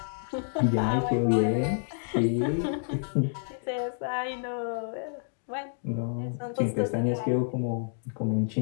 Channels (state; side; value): silent; right; digital silence